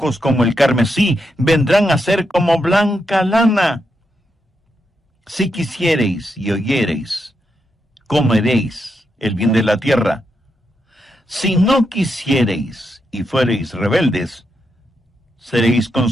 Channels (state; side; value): normal; both; correlation 0.83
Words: como el carmesí, vendrán a ser como blanca lana. Si quisiereis y oyereis, comeréis el bien de la tierra. Si no quisiereis y fuereis rebeldes, seréis